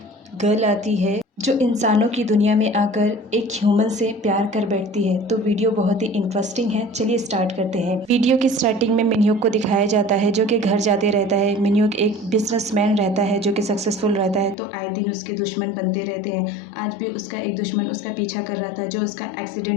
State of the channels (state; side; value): drops out; right; at 14.6 s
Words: गर्ल आती है जो इंसानों की दुनिया में आकर एक ह्यूमन से प्यार कर बैठती है। तो वीडियो बहुत ही इंटरेस्टिंग है, चलिए स्टार्ट करते हैं। वीडियो की स्टार्टिंग में मिन्योक को दिखाया जाता है जो कि घर जाते रहता है। मिन्योक एक बिजनेसमैन रहता है जो कि सक्सेसफुल रहता है, तो आए दिन उसके दुश्मन बनते रहते हैं। आज भी उसका एक दुश्मन उसका पीछा कर रहा था जो उसका